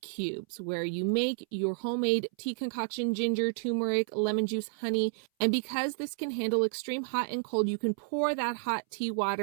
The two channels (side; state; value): left; silent; 57 dB below the other